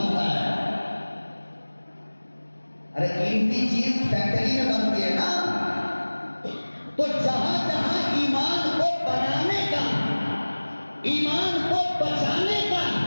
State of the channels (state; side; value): inverted; both; correlation -1.00